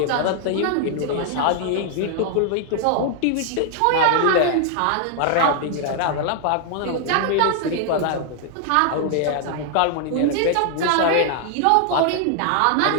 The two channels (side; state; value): both; different; correlation 0.00